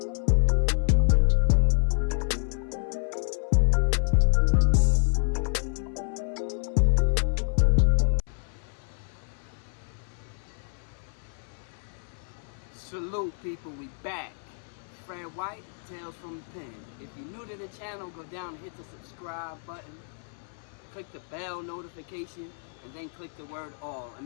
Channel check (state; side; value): silent; right; 58 dB below the other